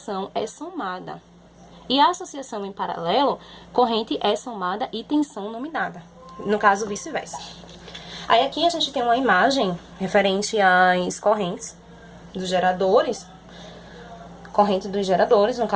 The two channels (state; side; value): identical; both; correlation 1.00